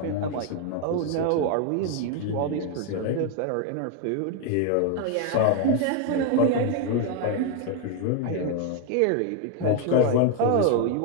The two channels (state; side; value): different; both; correlation 0.01